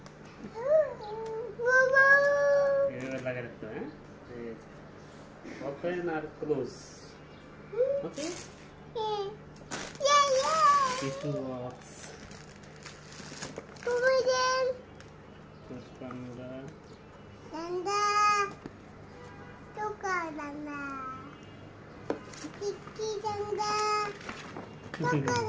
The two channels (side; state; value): both; identical; correlation 1.00